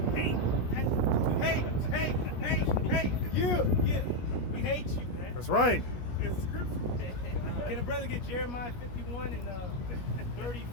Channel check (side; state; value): right; late; 17 ms